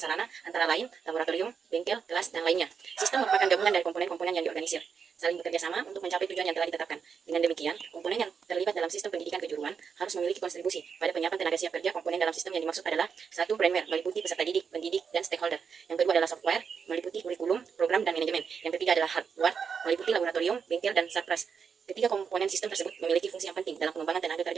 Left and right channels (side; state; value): left; quieter; 6.4 dB